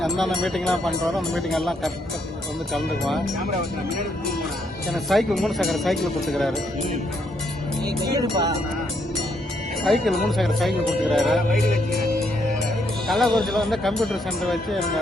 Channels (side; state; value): both; normal; correlation 0.74